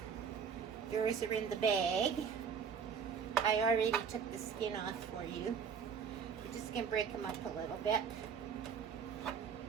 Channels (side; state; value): left; quieter; 6.7 dB